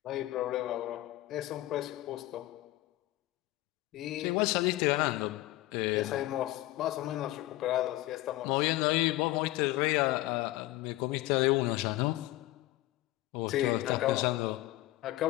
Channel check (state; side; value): quieter; right; 17.2 dB